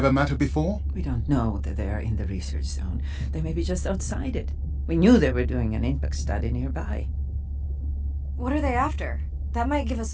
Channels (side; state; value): both; identical; correlation 1.00